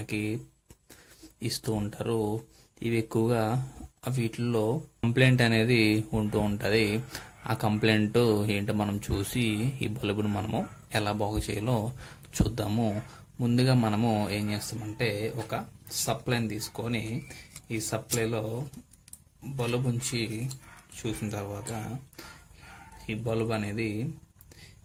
ఇస్తూ ఉంటారు. ఇవి ఎక్కువగా వీటిల్లో కంప్లైంట్ అనేది ఉంటూ ఉంటుంది. ఆ కంప్లైంట్ ఏంటో మనం చూసి ఈ బల్బును మనము ఎలా బాగు చేయాలో చూద్దాము. ముందుగా మనము ఏం చేస్తామంటే ఒక సప్లైని తీసుకొని ఈ సప్లైలో బల్బ్ ఉంచి చూసిన తర్వాత ఈ బల్బ్ అనేది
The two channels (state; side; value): identical; both; correlation 1.00